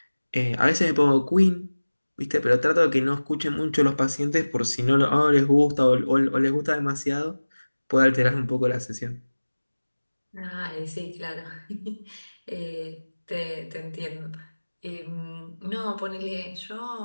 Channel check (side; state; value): both; inverted; correlation -1.00